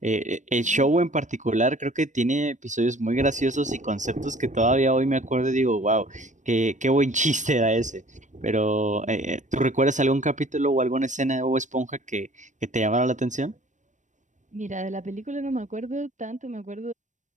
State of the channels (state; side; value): late; left; 0.35 ms